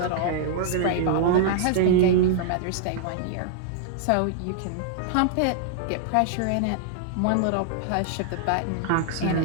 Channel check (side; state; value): both; different; correlation -0.01